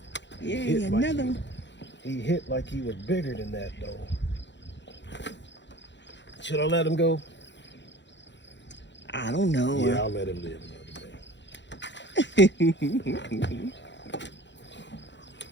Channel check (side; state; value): right; late; 0.52 ms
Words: Yay, another one. He hit like he was bigger than that, though. Should I let him go? I don't know. Yeah, I'll let him live another day.